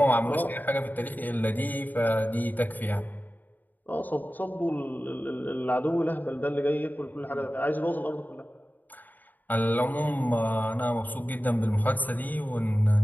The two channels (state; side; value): late; right; 0.086 ms